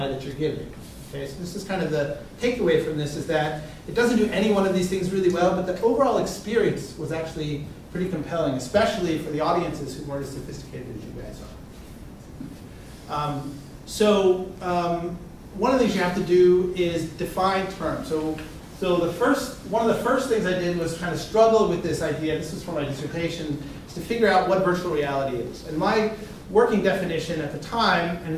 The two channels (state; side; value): identical; both; correlation 1.00